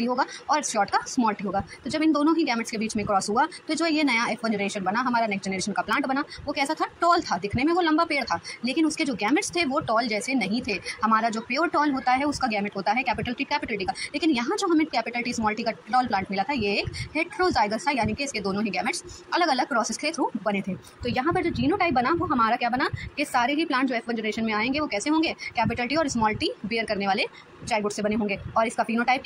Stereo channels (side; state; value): both; identical; correlation 1.00